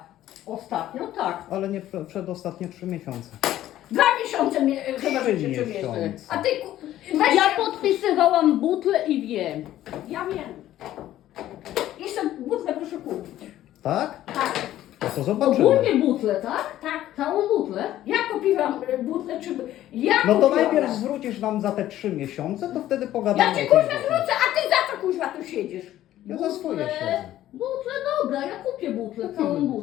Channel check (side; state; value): right; quieter; 13.3 dB